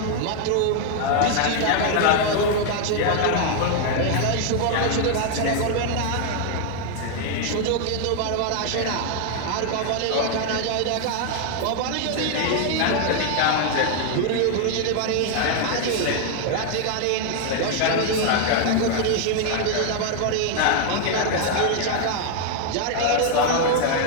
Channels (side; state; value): both; different; correlation 0.00